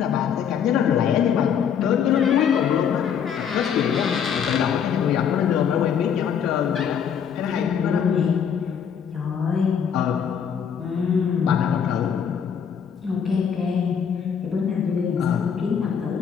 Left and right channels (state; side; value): quieter; right; 7.7 dB